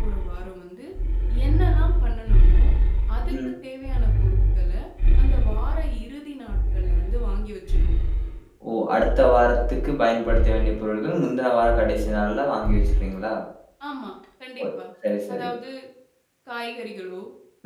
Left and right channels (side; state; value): both; identical; correlation 1.00